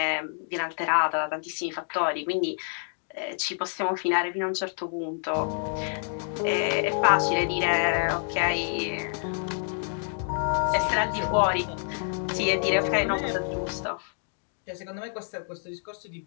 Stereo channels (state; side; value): silent; right; digital silence